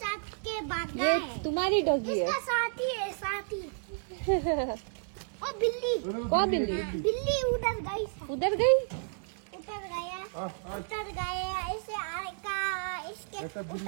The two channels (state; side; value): silent; left; digital silence